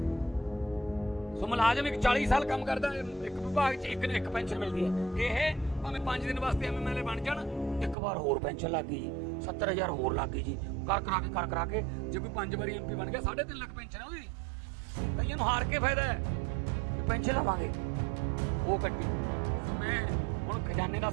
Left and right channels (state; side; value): drops out; left; at 8.0 s